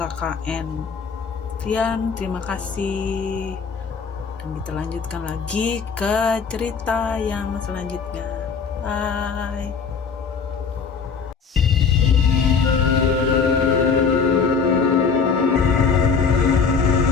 Sekian, terima kasih. Dan kita lanjutkan lagi ke cerita yang selanjutnya. Bye.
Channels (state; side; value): quieter; right; 5.7 dB